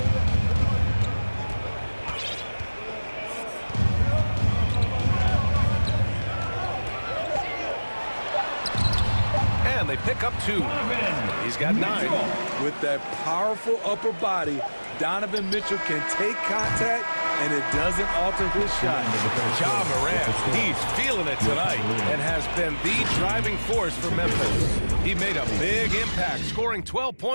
And they pick up 2. He's got 9. With that powerful upper body, Donovan Mitchell can take contact, and it doesn't alter his shot. Ja Morant, he's feeling it tonight and has been the driving force for Memphis. He made a big impact, scoring 12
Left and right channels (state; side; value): inverted; both; correlation -1.00